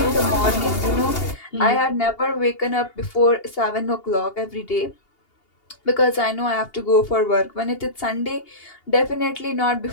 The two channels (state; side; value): late; right; 2.8 ms